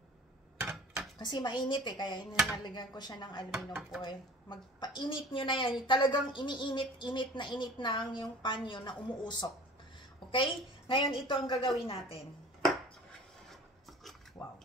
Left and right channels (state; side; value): normal; both; correlation 0.44